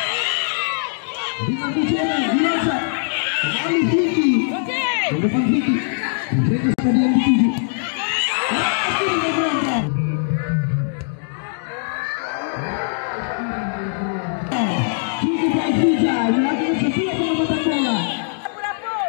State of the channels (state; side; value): silent; right; digital silence